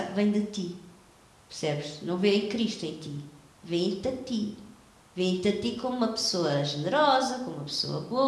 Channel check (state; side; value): identical; both; correlation 1.00